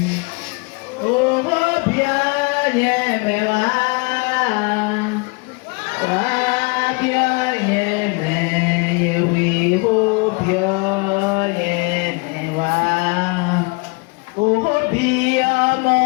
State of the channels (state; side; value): quieter; right; 30.6 dB